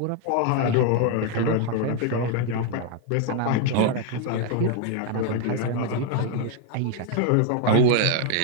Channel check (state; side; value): different; both; correlation 0.00